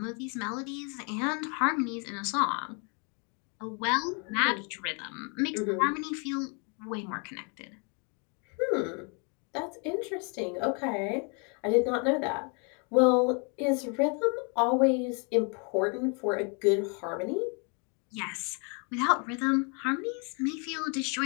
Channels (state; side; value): quieter; right; 36.2 dB